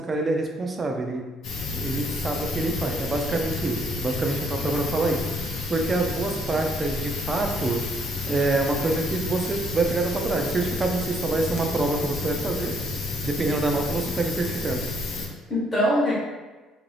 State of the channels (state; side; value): normal; both; correlation 0.69